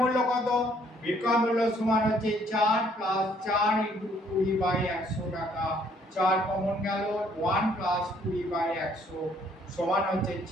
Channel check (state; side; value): normal; both; correlation 0.64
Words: কত? বিক্রয় মূল্য সমান হচ্ছে 4 প্লাস 4 ইন্টু 20 বাই 100 টাকা। 4 কমন গেল, 1 প্লাস 20 বাই 100 সমান হচ্ছে